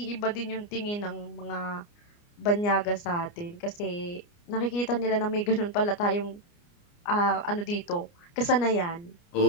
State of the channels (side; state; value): right; late; 29 ms